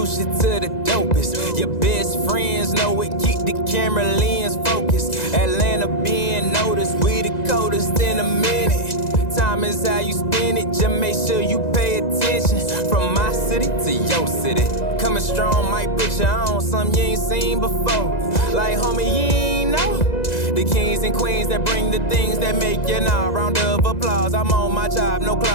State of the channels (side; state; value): right; late; 1.9 ms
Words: you to the dopest. Your best friends know it, keep the camera lens focused. Atlanta being noticed, we the coldest in a minute. Time is how you spend it, just make sure you pay attention. From my city to your city, coming strong might put you on something you ain't seen before. Like homie, you ain't know the kings and queens that bring the things that make you know. Round of applause, I'm on my job, no